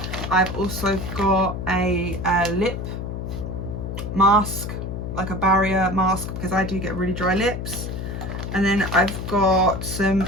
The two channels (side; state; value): left; noise; hum, 5 dB below the sound